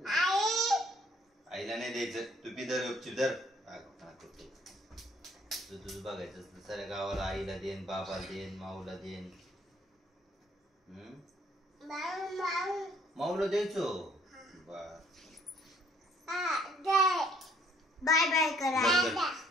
आईला नाही द्यायचं तू पी दर गपचूप दर तुझं बघायचं साऱ्या गावाला आईला देन बाबाला देन माऊला देन माऊला द्यायचो बाय बाय करा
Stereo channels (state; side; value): normal; both; correlation 0.63